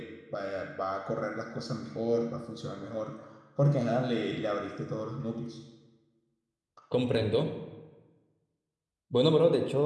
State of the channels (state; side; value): identical; both; correlation 1.00